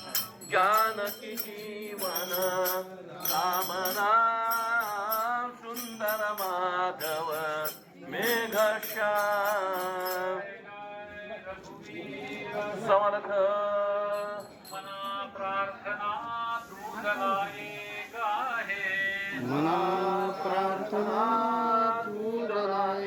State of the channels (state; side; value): identical; both; correlation 1.00